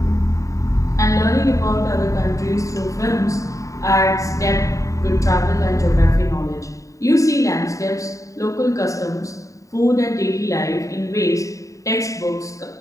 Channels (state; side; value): late; right; 0.16 ms